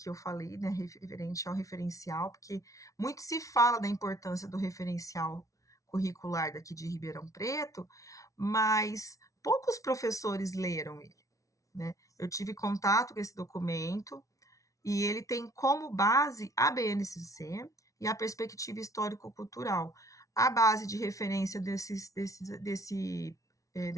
eu falei, né, referente ao referencial, porque muito se fala da importância do referencial curricular daqui de Ribeirão Preto, mas poucos professores leram ele, né? Eu tive contato com esse documento e ele tem como base a BNCC e a perspectiva histórico-cultural. A base de referência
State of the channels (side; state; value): right; late; 0.16 ms